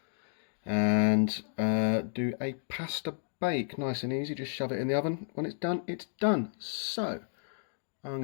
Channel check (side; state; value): right; silent; digital silence